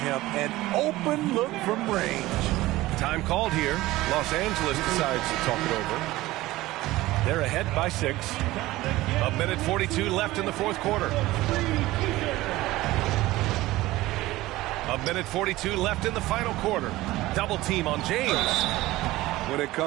An open look from range. Time called here. Los Angeles decides to talk it over. They're ahead by 6. 1:42 left in the fourth quarter. 1:42 left in the final quarter. Double team on James. When it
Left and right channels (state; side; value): quieter; left; 17.8 dB